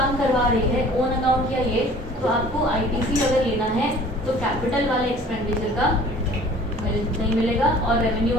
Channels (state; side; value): normal; both; correlation 0.49